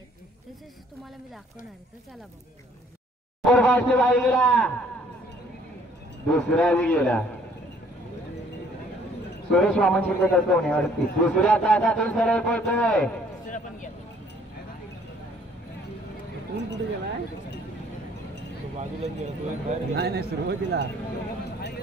तसेच तुम्हाला मी दाखवणार आहे, तर चला बघू. दुसरा गेला सुरेश वामन शिंदे होण्यावरती दुसऱ्या तासातून सरळ पळतोय. कुठे गेलाय बाजूला नाही सुरुवातीला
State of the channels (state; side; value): normal; both; correlation 0.60